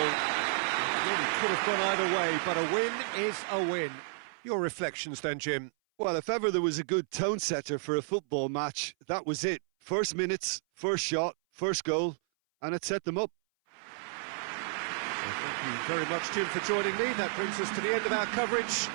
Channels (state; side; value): silent; left; 57 dB below the other